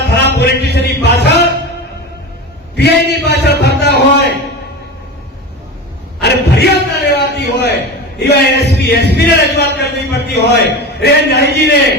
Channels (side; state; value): both; normal; correlation 0.27